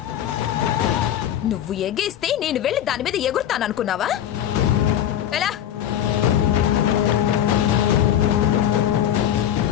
నువ్వు ఎగేస్తే నేను వెళ్ళి దాని మీద ఎగురుతాననుకున్నావా? ఎలా?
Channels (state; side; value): quieter; right; 10.7 dB